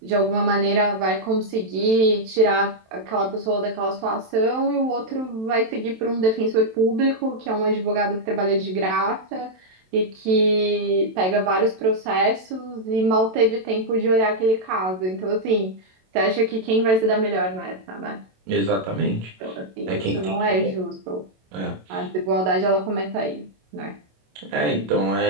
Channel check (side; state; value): left; late; 27 ms